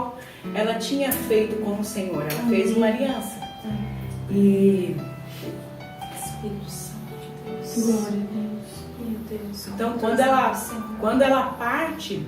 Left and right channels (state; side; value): identical; both; correlation 1.00